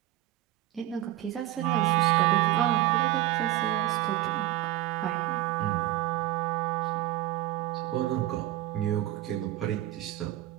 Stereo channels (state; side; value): quieter; left; 15.0 dB